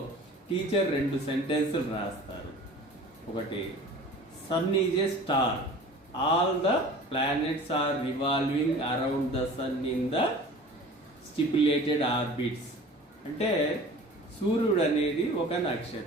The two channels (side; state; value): both; normal; correlation 0.42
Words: టీచర్ 2 సెంటెన్సులు రాస్తారు. ఒకటి, sun is a star, all the planets are revolving around the sun in the stipulated orbits. అంటే సూర్యుడు అనేది ఒక